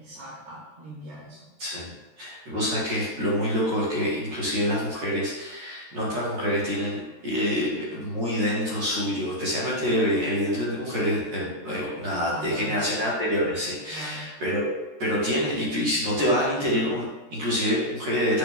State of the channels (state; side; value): late; left; 13 ms